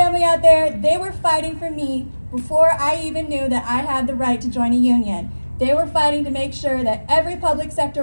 out there. They were fighting for me before I even knew that I had the right to join a union. They were fighting to make sure that every public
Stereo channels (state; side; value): inverted; both; correlation -1.00